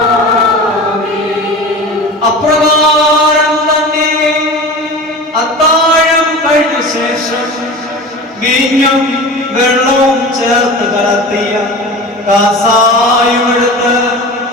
അപ്രകാരം തന്നെ അത്താഴം കഴിഞ്ഞ ശേഷം വീഞ്ഞും വെള്ളവും ചേർത്ത് കലർത്തിയ കാസായുമെടുത്ത്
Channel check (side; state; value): both; normal; correlation 0.33